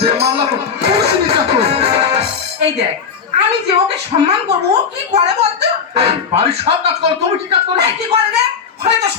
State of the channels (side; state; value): right; quieter; 6.3 dB